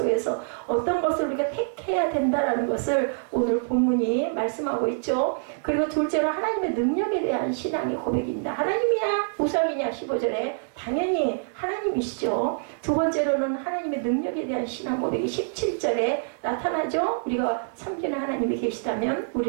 어떤 것을 우리가 택해야 된다라는 것을 오늘 본문이 말씀하고 있죠. 그리고 둘째로 하나님의 능력에 대한 신앙의 고백입니다. 하나님이야 우상이냐 15절에 당연히 하나님이시죠. 두 번째로는 하나님의 능력에 대한 신앙 고백이 17절에 나타나죠. 우리가 섬기는 하나님이 계시다면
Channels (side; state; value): left; silent; digital silence